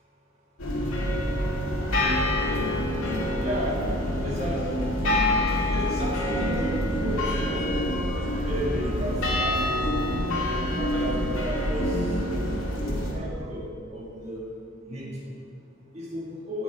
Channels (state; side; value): normal; both; correlation 0.50